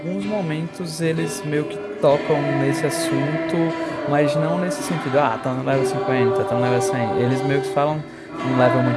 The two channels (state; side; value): identical; both; correlation 1.00